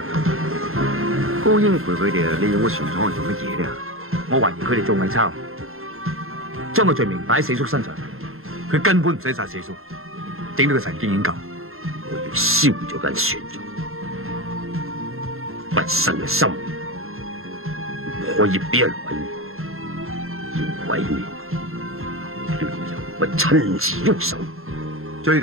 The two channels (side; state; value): left; late; 0.61 ms